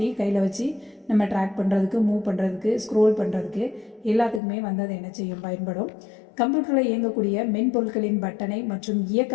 கையில் வச்சு நம்ம ட்ராக் பண்ணுறதுக்கு, மூவ் பண்ணுறதுக்கு, ஸ்க்ரோல் பண்ணுறதுக்கு எல்லாத்துக்குமே அது என்ன செய்யும், பயன்படும். கம்ப்யூட்டரில் இயங்கக்கூடிய மென்பொருட்களின் பட்டனை மற்றும் இயக்க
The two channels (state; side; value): drops out; right; at 4.4 s